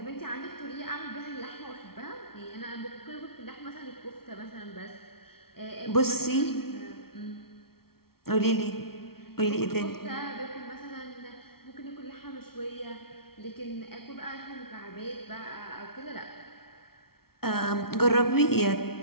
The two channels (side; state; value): right; late; 0.94 ms